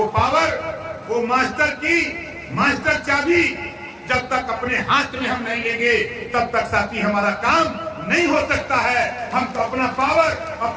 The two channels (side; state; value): both; identical; correlation 1.00